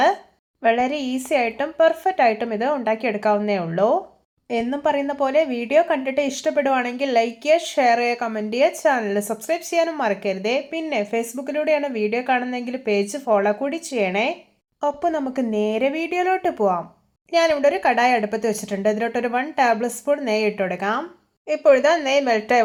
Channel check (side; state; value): both; identical; correlation 1.00